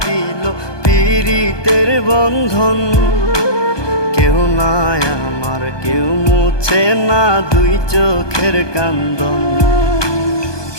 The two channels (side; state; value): right; late; 1.2 ms